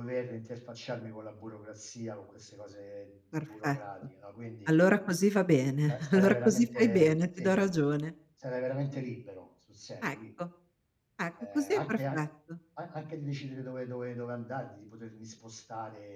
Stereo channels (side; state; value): both; identical; correlation 1.00